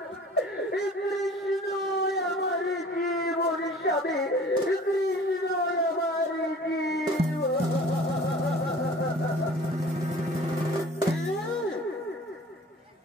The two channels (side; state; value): both; normal; correlation 0.47